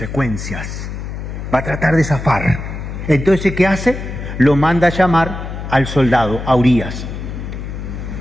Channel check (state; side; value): noise; left; hum, 7 dB below the sound